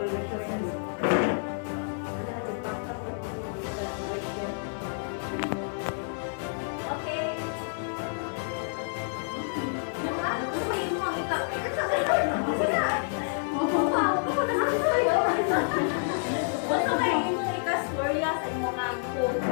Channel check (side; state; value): right; silent; digital silence